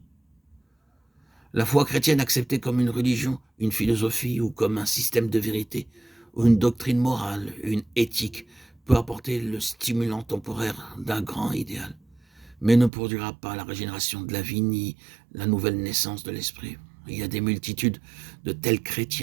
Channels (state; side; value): drops out; left; at 12.9 s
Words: La foi chrétienne acceptée comme une religion, une philosophie ou comme un système de vérité, ou une doctrine morale, une éthique, peut apporter le stimulant temporaire d'un grand idéal, mais ne produira pas la régénération de la vie ni la nouvelle naissance de l'esprit. Il y a des multitudes de tels